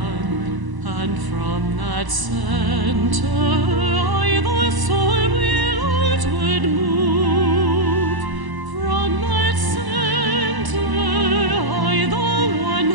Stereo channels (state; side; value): late; left; 1.0 ms